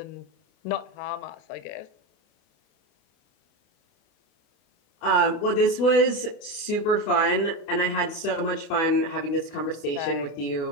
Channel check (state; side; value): late; right; 28 ms